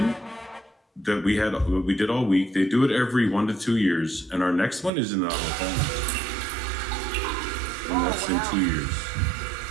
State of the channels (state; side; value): drops out; left; at 4.9 s